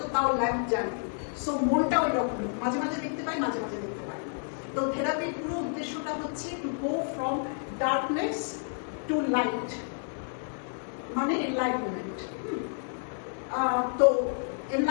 তাও ল্যাম্প জ্বালিয়ে। সো মনটা ওই রকমই, মাঝে মাঝে দেখতে পাই, মাঝে মাঝে দেখতে পাই। তো থেরাপির পুরো উদ্দেশ্যটা হচ্ছে to go from darkness two light, মানে এনলাইটমেন্ট। তো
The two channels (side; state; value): right; silent; 58 dB below the other